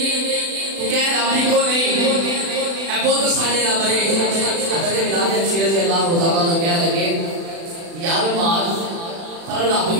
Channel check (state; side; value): late; left; 36 ms